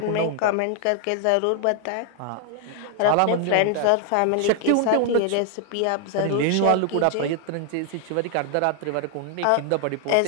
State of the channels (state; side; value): different; both; correlation 0.00